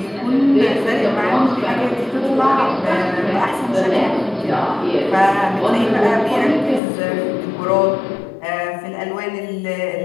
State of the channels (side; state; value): right; drops out; at 6.8 s